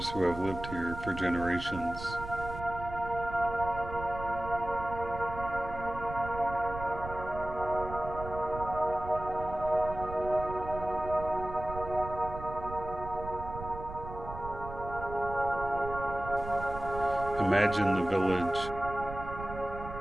who have lived here for generations. Imagine the village,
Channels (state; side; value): noise; right; rumble, 10 dB below the sound